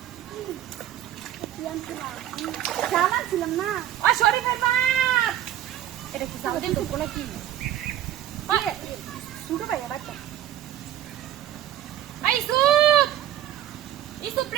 জামাই ছিলাম না ও শরীফের বাপ এটা কি জামাই দিন তো নাকি শুরু ভাই বাচ্চা আই সুপ ইসুপ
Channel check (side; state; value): left; quieter; 12.2 dB